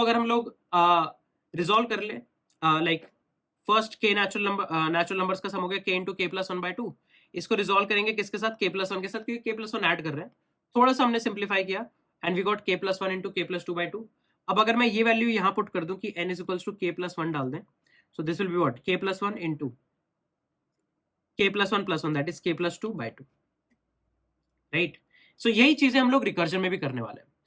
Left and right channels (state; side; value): identical; both; correlation 1.00